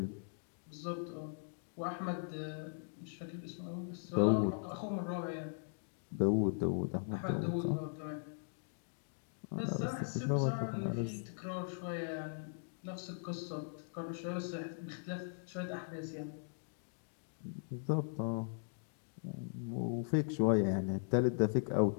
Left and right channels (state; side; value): silent; right; digital silence